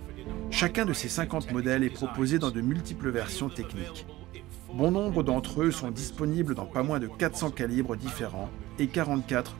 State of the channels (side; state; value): left; quieter; 17.5 dB